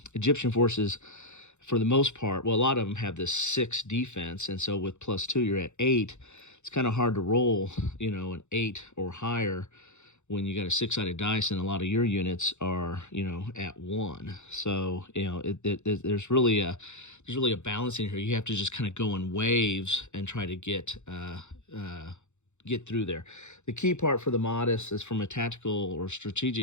Egyptian forces, for the most part, well, a lot of them have this 6 defense, and so with +2, you're at 8. It's kind of hard to roll, an 8 or higher when you got a 6-sided dice, and a lot of your units are, at 1. So, there's really a balance in here. You have to just kind of go in waves and try to get through there. The key part for the Mahdists is, from a tactical or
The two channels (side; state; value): right; late; 0.83 ms